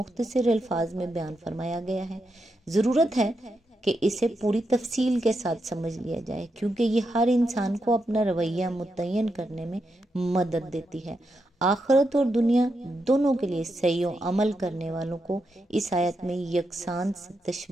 الفاظ میں بیان فرمایا گیا ہے۔ ضرورت ہے کہ اسے پوری تفصیل کے ساتھ سمجھ لیا جائے، کیونکہ یہ ہر انسان کو اپنا رویہ متعین کرنے میں مدد دیتی ہے۔ آخرت اور دنیا دونوں کے لیے صحیح و عمل کرنے والوں کو اس آیت میں یکساں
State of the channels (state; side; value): normal; both; correlation 0.84